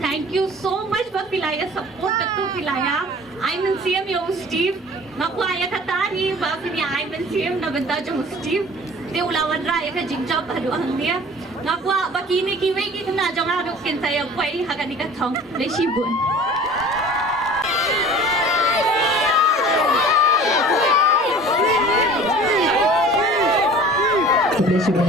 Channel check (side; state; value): both; normal; correlation 0.44